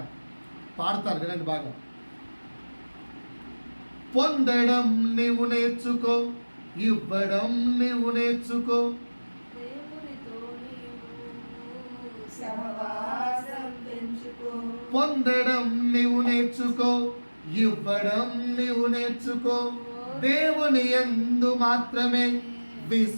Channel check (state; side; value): inverted; both; correlation -1.00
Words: పాడుతాను, వినండి బాగా. పొందడం నీవు నేర్చుకో, ఇవ్వడం నీవు నేర్చుకో, పొందడం నీవు నేర్చుకో, ఇవ్వడం నీవు నేర్చుకో, దేవుని యందు మాత్రమే